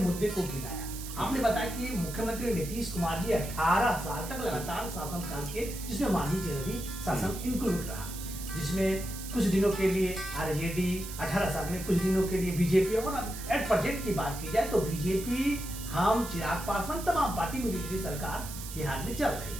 को गिनाया। आपने बताया कि मुख्यमंत्री नीतीश कुमार जी 18 साल तक लगातार शासनकाल के, जिसमें मांझी जी भी शासन इंक्लूड रहा, जिसमें कुछ दिनों के लिए आरजेडी, 18 साल में कुछ दिनों के लिए बीजेपी, और एट प्रेजेंट की बात की जाए तो बीजेपी, हम, चिराग पासवान, तमाम पार्टी मिली सरकार बिहार में चल रही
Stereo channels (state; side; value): noise; right; hiss, 10 dB below the sound